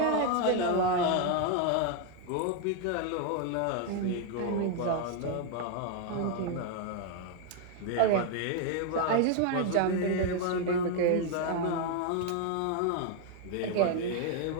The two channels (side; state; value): both; different; correlation 0.01